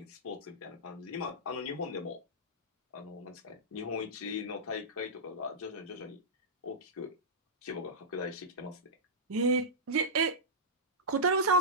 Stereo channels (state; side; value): normal; both; correlation -0.14